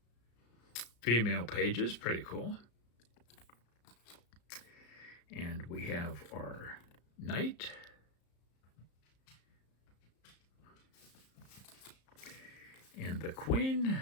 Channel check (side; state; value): right; late; 34 ms